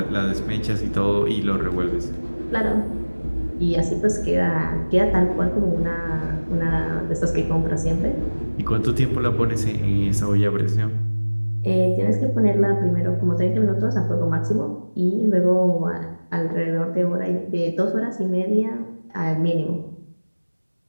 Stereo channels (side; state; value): both; inverted; correlation -1.00